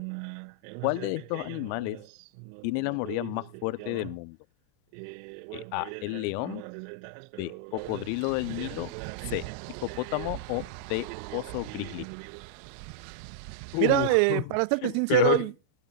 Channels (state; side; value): different; both; correlation -0.03